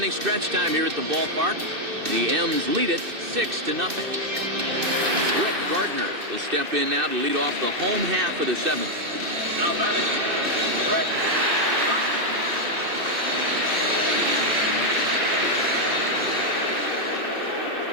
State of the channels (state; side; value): late; left; 2.6 ms